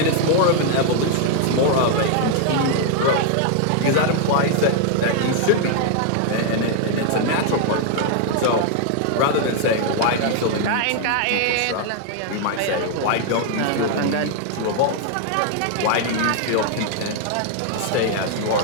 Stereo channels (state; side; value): different; both; correlation 0.00